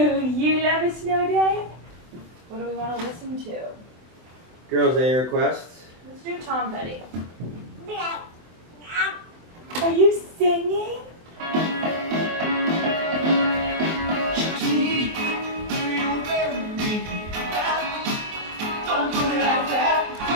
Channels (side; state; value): left; late; 24 ms